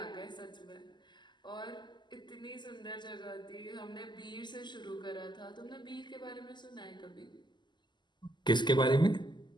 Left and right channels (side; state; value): right; late; 0.21 ms